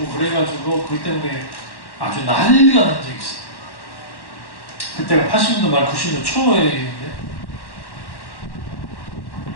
그래가지고 그것 때문에 아주 난리가 난 적이 있어요. 그때가 80년도 말 90년도 초에인데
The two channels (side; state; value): right; late; 1.1 ms